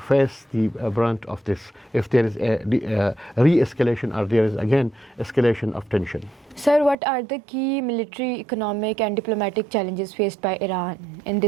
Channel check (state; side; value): drops out; left; at 7.0 s